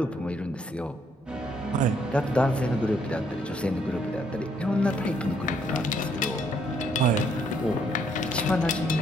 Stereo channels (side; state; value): both; normal; correlation 0.69